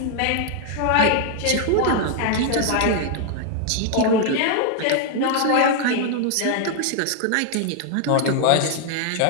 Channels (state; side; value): different; both; correlation 0.00